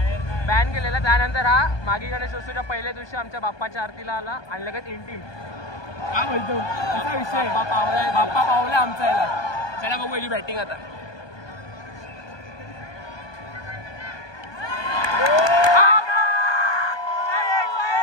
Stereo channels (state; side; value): late; right; 1.2 ms